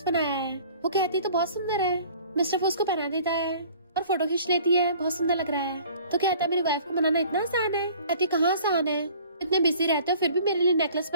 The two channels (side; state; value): both; inverted; correlation -0.50